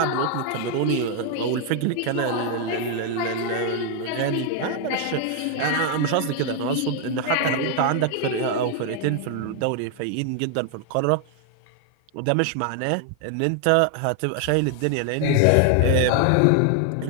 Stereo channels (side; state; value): both; different; correlation 0.00